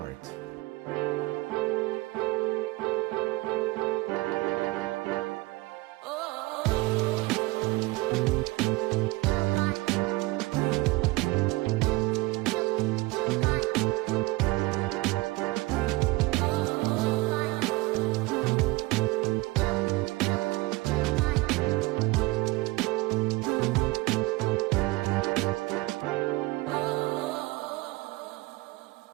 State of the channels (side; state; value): left; quieter; 21.6 dB